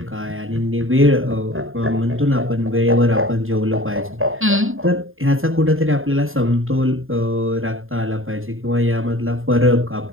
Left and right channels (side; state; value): left; late; 0.60 ms